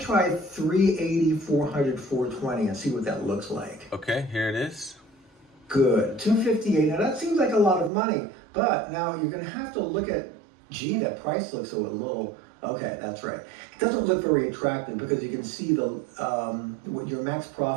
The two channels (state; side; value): drops out; left; at 7.9 s